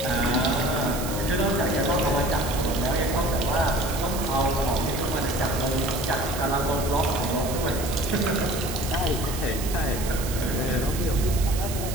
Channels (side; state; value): right; noise; hiss, 9 dB below the sound